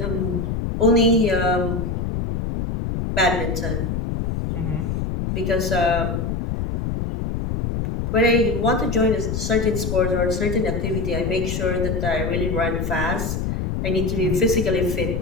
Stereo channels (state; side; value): noise; left; rumble, 2 dB below the sound